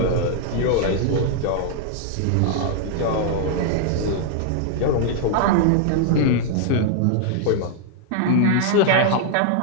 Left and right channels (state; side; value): different; both; correlation -0.01